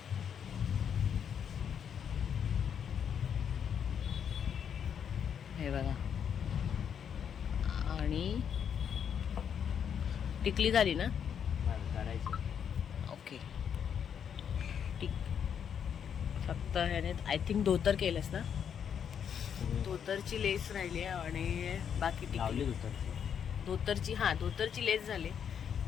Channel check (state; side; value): quieter; right; 8.0 dB